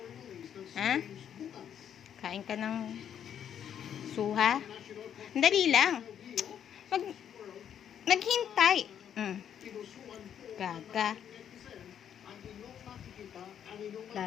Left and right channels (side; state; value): right; quieter; 9.1 dB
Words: Ha? Kain ka ng suha? Dali lang. Naghintay. Gaga.